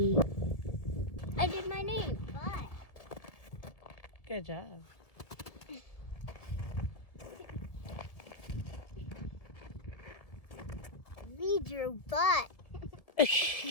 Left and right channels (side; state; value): right; late; 1.8 ms